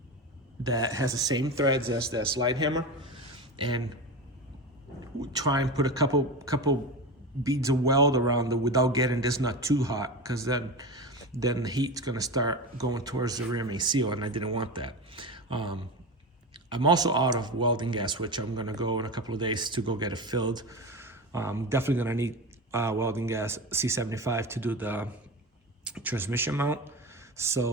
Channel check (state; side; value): normal; both; correlation 0.24